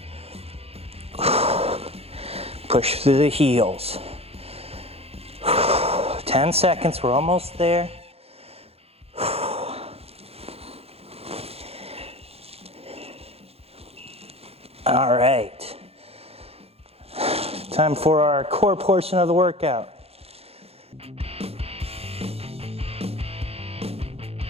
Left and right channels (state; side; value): late; left; 0.29 ms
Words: Push through the heels. 10 seconds, we're almost there. All right. Time for our core portion of the workout.